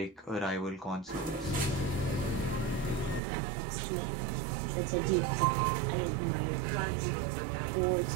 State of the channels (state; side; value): drops out; left; at 3.2 s